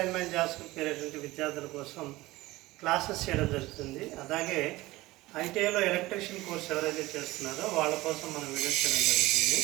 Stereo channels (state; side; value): quieter; left; 19.1 dB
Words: జాబ్స్ ప్రిపేర్ అయ్యేటువంటి విద్యార్థుల కోసం క్లాసెస్ చేయడం జరుగుతుంది. అలాగే ఐటీఐలో ఎలక్ట్రీషియన్ కోర్స్ ఎవరైతే చేస్తున్నారో వాళ్ళ కోసం మనం వీడియోస్ చేయడం జరుగుతుంది.